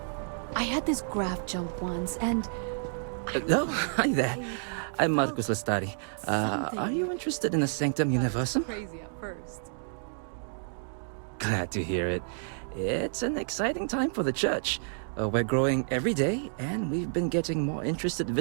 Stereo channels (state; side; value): silent; left; digital silence